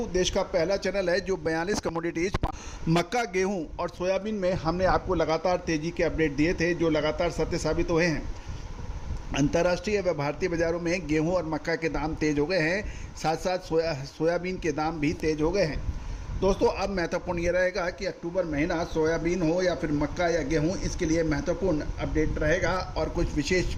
देश का पहला चैनल है जो 42 कमोडिटीज मक्का, गेहूं और सोयाबीन में हमने आपको लगातार तेजी के अपडेट दिए थे जो लगातार सत्य साबित हुए हैं। अंतर्राष्ट्रीय व भारतीय बाजारों में गेहूं और मक्का के दाम तेज हो गए हैं, साथ साथ सोयाबीन के दाम भी तेज हो गए हैं। दोस्तों अब महत्वपूर्ण ये रहेगा कि अक्टूबर महीना सोयाबीन हो या फिर मक्का या गेहूं, इसके लिए महत्वपूर्ण अपडेट रहेगा और कुछ विशेष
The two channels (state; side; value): identical; both; correlation 1.00